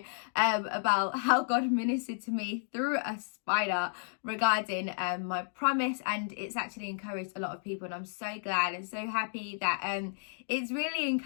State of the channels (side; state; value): right; silent; digital silence